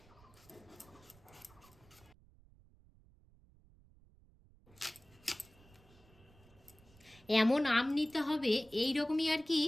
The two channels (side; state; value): right; noise; rumble, 26 dB below the sound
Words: এমন আম নিতে হবে এই রকমই আর কি,